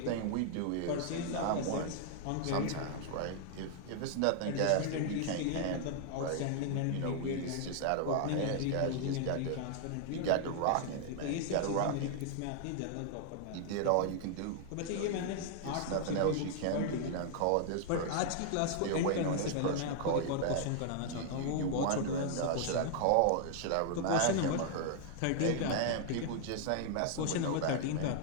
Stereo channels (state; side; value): different; both; correlation -0.01